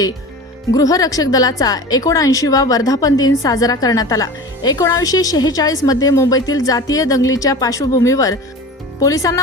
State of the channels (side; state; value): both; normal; correlation 0.35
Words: गृहरक्षक दलाचा 79वा वर्धापन दिन साजरा करण्यात आला। 1946 मध्ये मुंबईतील जातीय दंगलीच्या पार्श्वभूमीवर